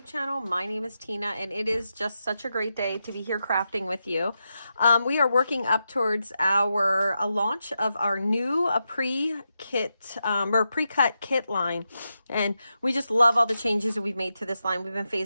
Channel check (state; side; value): inverted; both; correlation -0.87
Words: channel. My name is Tina and it is just such a great day to be here crafting with you. We are working up towards our launch of our new pre-kit or pre-cut kit line, and we just love all the changes that we've made to this line. We've been